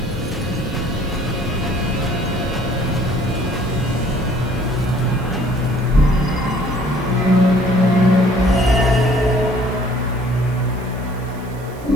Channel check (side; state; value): right; noise; hiss, 24 dB below the sound